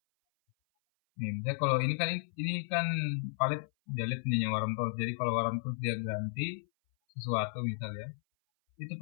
nih misalnya kalau ini kan palet delete punya Warmton. Jadi kalau Warmton dia ganti sesuatu misalnya, itu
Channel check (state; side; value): silent; right; 55 dB below the other